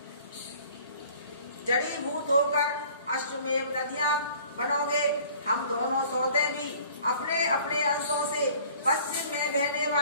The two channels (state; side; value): inverted; both; correlation -0.52